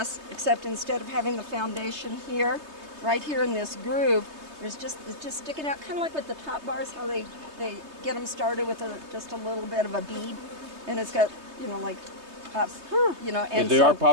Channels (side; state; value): left; late; 3.2 ms